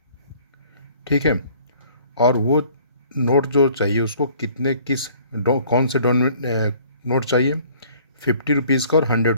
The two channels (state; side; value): inverted; both; correlation -0.56